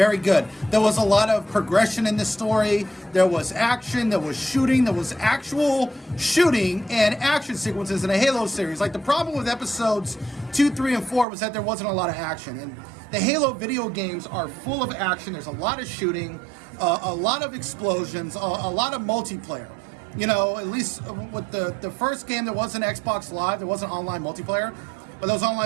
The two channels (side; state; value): left; drops out; at 11.2 s